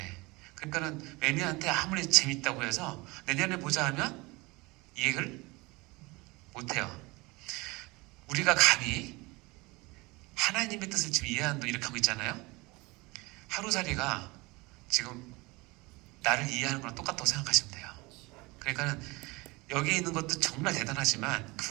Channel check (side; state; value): left; quieter; 23.9 dB